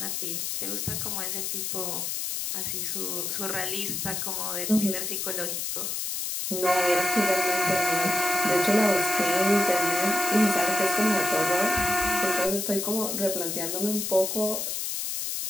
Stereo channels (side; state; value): left; noise; hiss, 2 dB below the sound